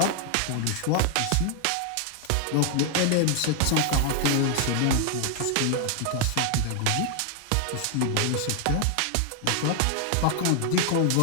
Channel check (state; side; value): different; both; correlation 0.00